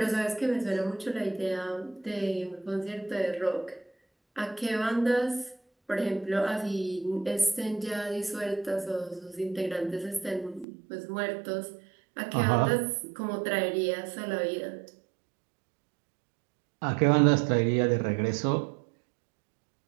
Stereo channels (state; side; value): drops out; left; at 10.7 s